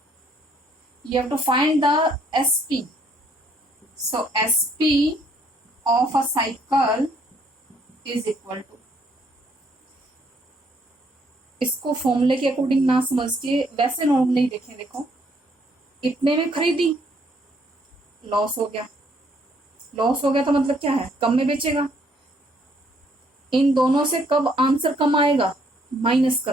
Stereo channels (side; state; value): both; normal; correlation 0.67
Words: You have to find the SP. So SP of a cycle is equal to, इसको फॉर्मूले के according ना समझ के वैसे नॉर्मली देखें. देखो इतने में खरीदी, लॉस हो गया. लॉस हो गया तो मतलब क्या है, कम में बेचेगा. इन दोनों से कब आंसर कम आएगा, माइनस